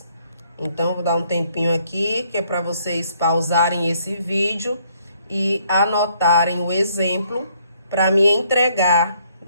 Então, vou dar um tempinho aqui, que é para vocês pausarem esse vídeo e anotarem o exemplo para me entregar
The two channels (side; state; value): both; inverted; correlation -0.67